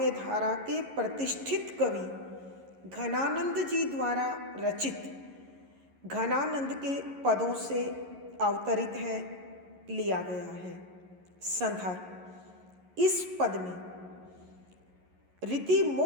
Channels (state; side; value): late; left; 11 ms